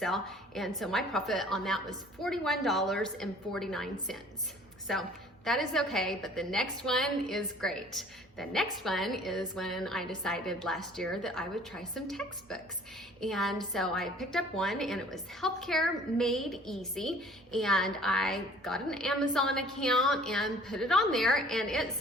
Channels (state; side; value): normal; both; correlation 0.52